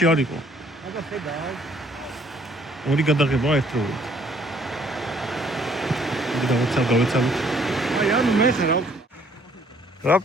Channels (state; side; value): normal; both; correlation 0.63